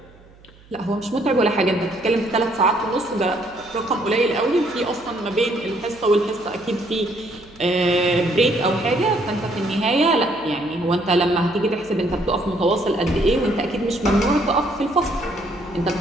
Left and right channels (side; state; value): right; noise; hum, 26 dB below the sound